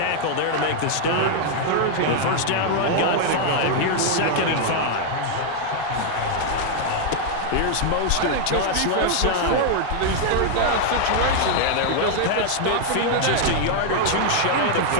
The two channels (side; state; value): both; different; correlation 0.00